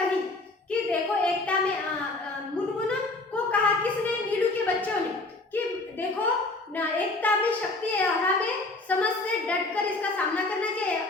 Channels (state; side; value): quieter; right; 3.1 dB